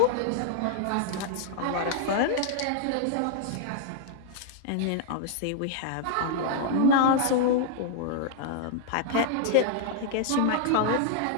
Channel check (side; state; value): both; different; correlation -0.01